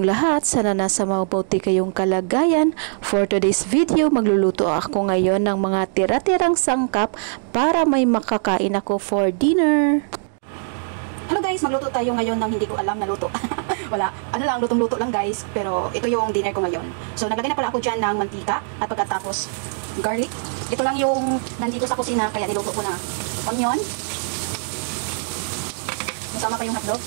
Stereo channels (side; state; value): left; silent; digital silence